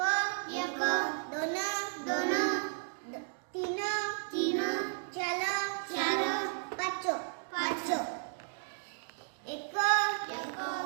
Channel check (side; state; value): left; silent; digital silence